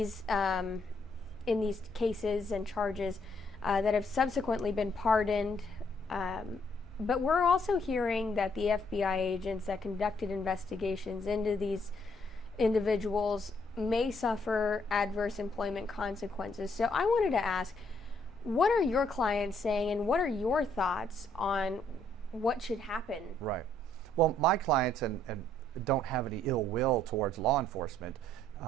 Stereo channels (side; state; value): both; normal; correlation 0.69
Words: cases and charges that have subsequently been pardoned. But we're also hearing that the FBI agents that conducted investigations into these individuals may suffer adverse employment consequences. So I wanted to ask, what are your clients saying, and what are your thoughts on what should happen? Right. Well, my clients and don't have any ill will towards law enforcement.